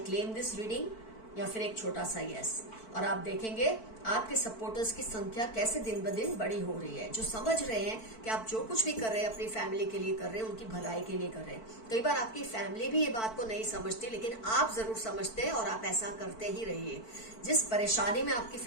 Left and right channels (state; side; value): late; right; 4.5 ms